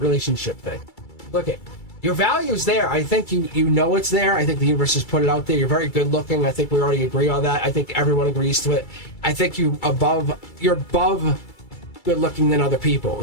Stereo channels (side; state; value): right; late; 2.3 ms